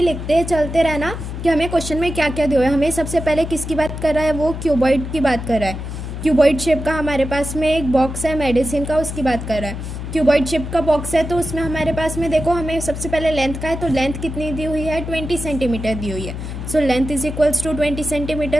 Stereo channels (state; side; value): noise; left; hum, 7 dB below the sound